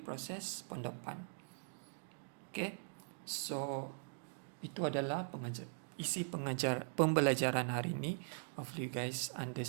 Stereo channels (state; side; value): silent; left; digital silence